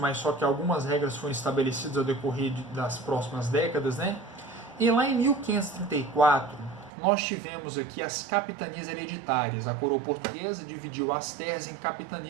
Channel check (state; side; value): drops out; left; at 6.9 s